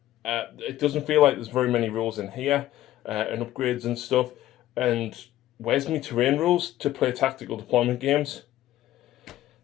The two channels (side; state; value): right; quieter; 13.9 dB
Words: It doesn't feel like there's very many rules in here, and upgrades and stuff. And where's my terrain rules to play tactical deployment games?